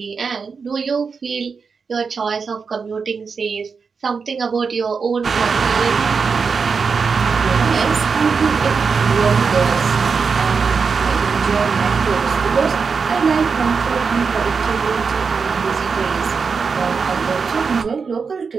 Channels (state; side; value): quieter; left; 5.3 dB